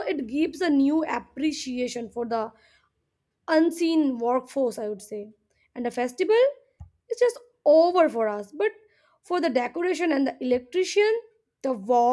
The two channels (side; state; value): both; identical; correlation 1.00